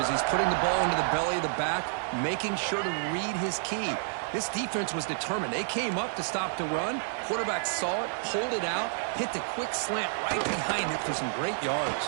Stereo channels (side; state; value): left; silent; digital silence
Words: he's putting the ball into the belly of the back, making sure to read his key. This defense was determined. They came up to stop the run. Quarterback saw it, pulled it out, hit the quick slant right behind it for some great